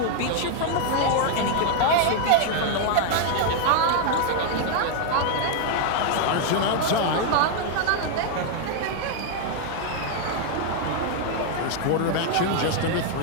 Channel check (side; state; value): both; different; correlation 0.00